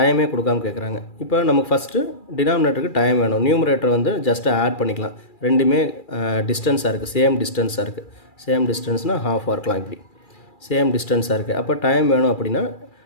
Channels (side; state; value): right; late; 2.4 ms